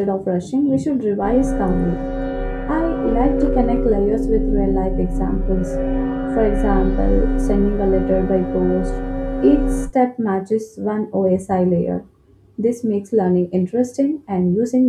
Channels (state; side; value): identical; both; correlation 1.00